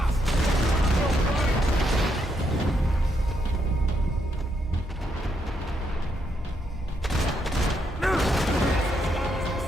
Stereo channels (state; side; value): normal; both; correlation 0.78